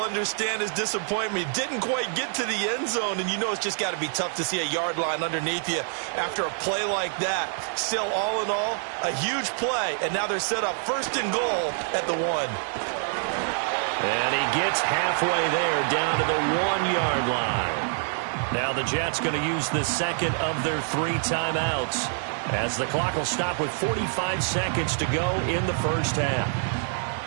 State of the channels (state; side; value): silent; left; 61 dB below the other